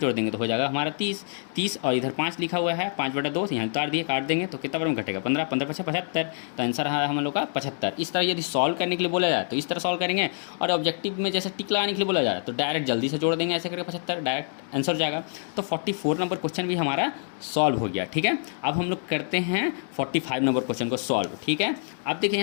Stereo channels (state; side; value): silent; right; 59 dB below the other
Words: देंगे तो हो जाएगा हमारा 30, और इधर 5 लिखा हुआ है, 5/2 यहाँ उतार दिए, काट देंगे तो कितना बार में घटेगा? 15, 15 5 75। तो आंसर है हम लोग का 75। इस तरह यदि सॉल्व करने के लिए बोला जाए तो इस तरह सॉल्व करेंगे, और ऑब्जेक्टिव में जैसे टिक लगाने के लिए बोला जा रहा है तो डायरेक्ट जल्दी से जोड़ देंगे, ऐसे करके 75 डायरेक्ट आंसर हो जाएगा। तो 44 नंबर क्वेश्चन भी हमारा सॉल्व हो गया, ठीक है। अब हम लोग करते हैं 45 नंबर क्वेश्चन को सॉल्व, ठीक है। अब देखिए